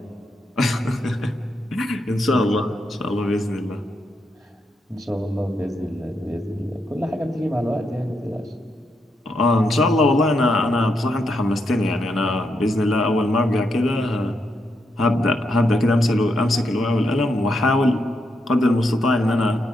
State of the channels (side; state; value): both; normal; correlation 0.81